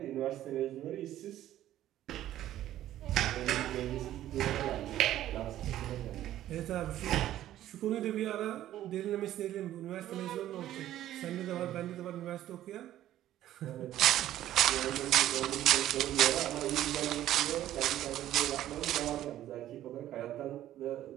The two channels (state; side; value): quieter; left; 13.0 dB